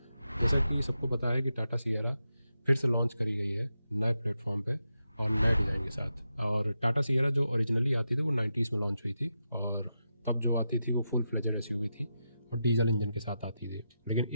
जैसा कि सबको पता है कि टाटा सियरा फिर से लॉन्च करी गई है नए प्लेटफॉर्म पे और नए डिज़ाइन के साथ। और टाटा सियरा जो ओरिजिनली आती थी वो 90s में लॉन्च हुई थी, और तब जो आती थी वो फुल फ्लेजेड एसयूवी थी और डीजल इंजन के साथ आती थी। लेकिन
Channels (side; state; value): both; inverted; correlation -0.87